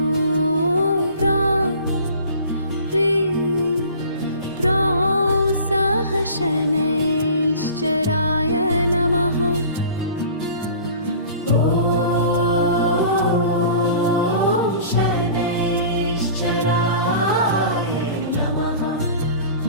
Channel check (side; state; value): both; inverted; correlation -0.43